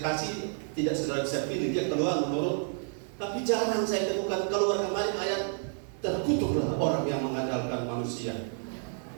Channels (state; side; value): silent; left; 58 dB below the other